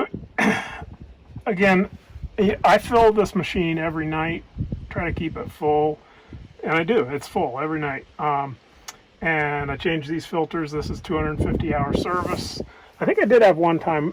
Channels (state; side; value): identical; both; correlation 1.00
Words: again, I fill this machine every night, try to keep it full, and I do. It's full every night. And I change these filters. This is 250-hour service. I think I did have one time